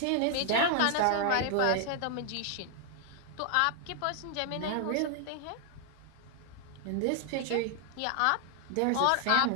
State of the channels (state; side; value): different; both; correlation 0.00